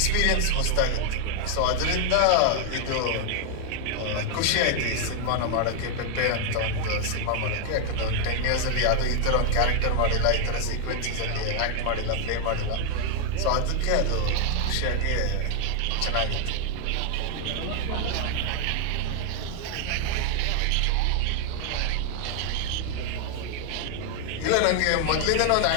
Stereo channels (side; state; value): both; different; correlation 0.00